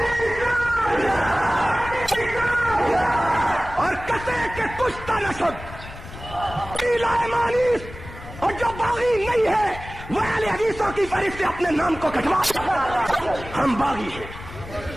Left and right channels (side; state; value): left; noise; rumble, 14 dB below the sound